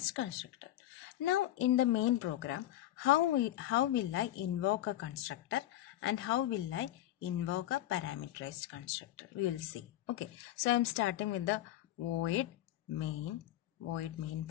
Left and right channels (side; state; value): right; quieter; 13.7 dB